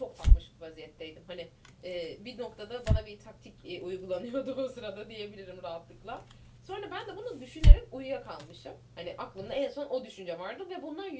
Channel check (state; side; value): identical; both; correlation 1.00